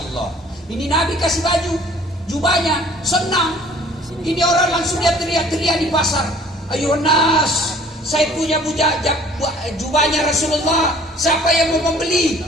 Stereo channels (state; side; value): normal; both; correlation 0.53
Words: Ini Nabi kasih baju. Jubahnya senang. Ini orang langsung dia teriak-teriak di pasar. Ayo nas, saya punya jubahnya Rasulullah. Siapa yang mau membeli?